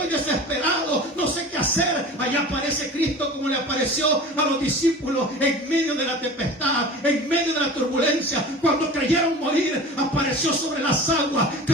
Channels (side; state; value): both; normal; correlation 0.37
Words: desesperado, no sé qué hacer. Allá aparece Cristo como le apareció a los discípulos en medio de la tempestad, en medio de la turbulencia. Cuando creyeron morir, apareció sobre las aguas